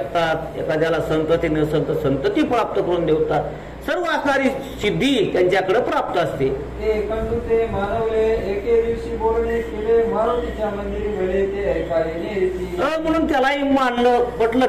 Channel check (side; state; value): both; identical; correlation 1.00